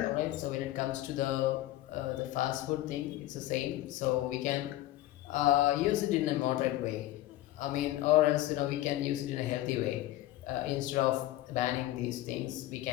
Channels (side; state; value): right; quieter; 15.3 dB